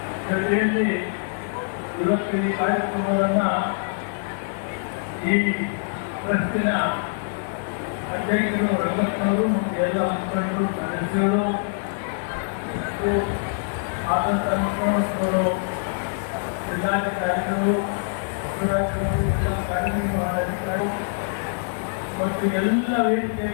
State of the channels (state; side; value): silent; right; digital silence